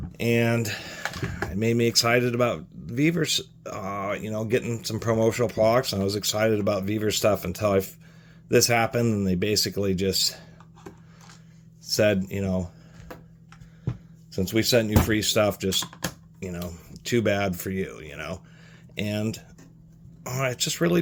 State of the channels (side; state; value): both; identical; correlation 1.00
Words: And it made me excited about Vevor's, you know, getting some promotional products. And I was excited about Vevor stuff until this happened, and they basically just said, you know, since we sent you free stuff, just, you know, too bad for you, you know. And it's just really